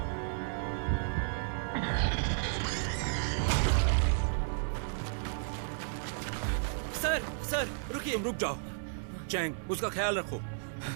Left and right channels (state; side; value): silent; left; digital silence